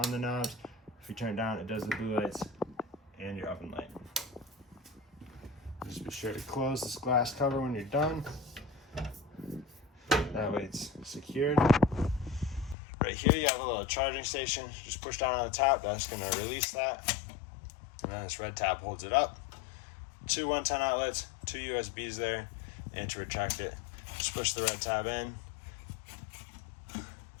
the knobs. If you turn it down, it does the blue lights and your oven light. Just be sure to close this glass cover when you're done. That way it's secured. Right here you have a little charging station. Just push down on the top, that's going to release that. And then this red tab holds it up. 2 110 outlets, 2 USBs there, and to retract it, just push the red tab in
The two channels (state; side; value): drops out; right; at 12.8 s